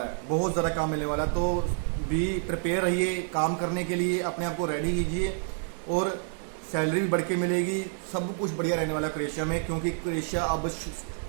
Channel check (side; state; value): left; silent; 56 dB below the other